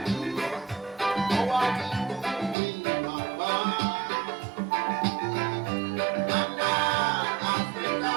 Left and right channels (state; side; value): drops out; left; at 2.6 s